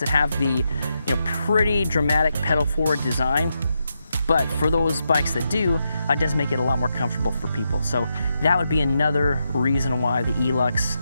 that have the, pretty dramatic pedal forward design, but for those bikes that do, it does make it a lot more comfortable for people. So that would be another reason why the ELUX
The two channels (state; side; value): inverted; both; correlation -0.84